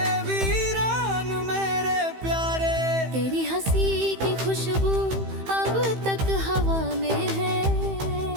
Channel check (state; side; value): late; left; 15 ms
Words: वीरान मेरे प्यारे। तेरी हंसी की खुशबू अब तक हवा में है,